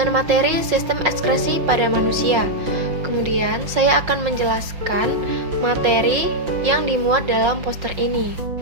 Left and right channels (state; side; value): late; left; 5.6 ms